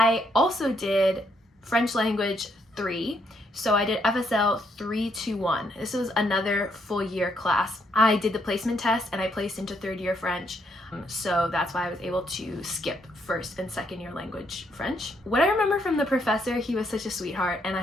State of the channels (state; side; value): normal; both; correlation 0.73